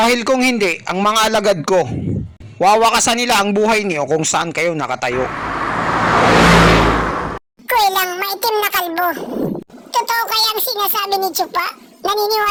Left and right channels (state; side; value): identical; both; correlation 1.00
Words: kung hindi, ang mga alagad ko, wawakasan nila ang buhay niyo kung saan kayo nakatayo. Kuwelang maitim na kalbo. Totoo kaya ang sinasabi ni Chupa?